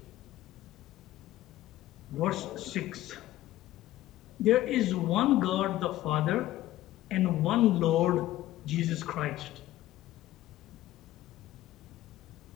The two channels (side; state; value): right; quieter; 15.0 dB